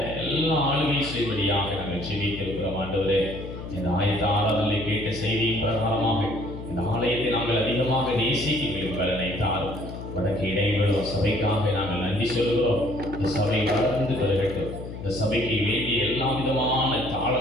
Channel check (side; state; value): left; noise; hum, 10 dB below the sound